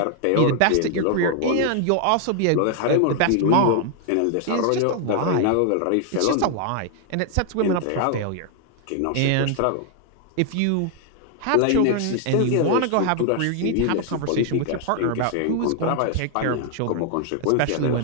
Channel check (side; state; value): both; different; correlation 0.00